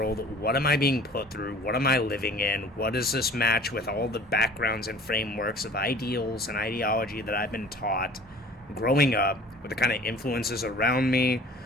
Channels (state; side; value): normal; both; correlation 0.47